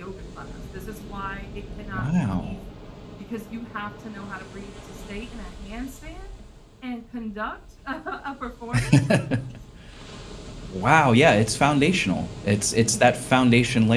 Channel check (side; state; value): both; identical; correlation 1.00